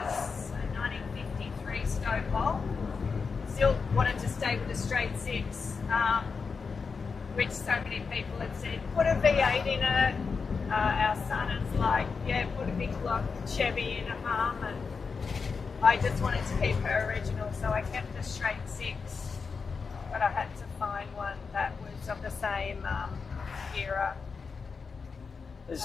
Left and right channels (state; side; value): quieter; right; 5.1 dB